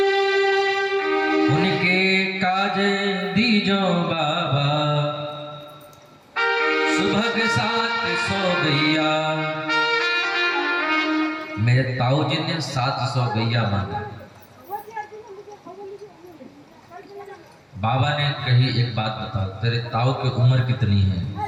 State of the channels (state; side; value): identical; both; correlation 1.00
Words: दीजो बाबा, सुबह के 700 गैया। मेरे ताऊ जी ने 700 गैया मांगा। बाबा ने कही एक बात बता, तेरे ताऊ की उम्र कितनी है?